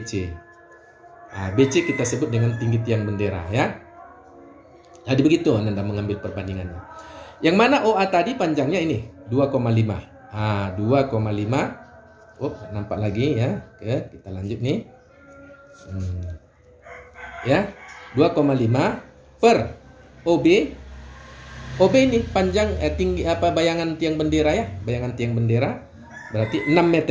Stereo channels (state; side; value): identical; both; correlation 1.00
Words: BC kita sebut dengan tinggi tiang bendera ya. Jadi begitu Anda mengambil perbandingannya. Yang mana OA tadi panjangnya ini 2,5. 2,5. Nampak lagi ya. Oke, kita lanjut nih. Ya, 2,5 per OB OB ini panjang tinggi bayangan tiang bendera ya, bayangan tiang bendera berarti 6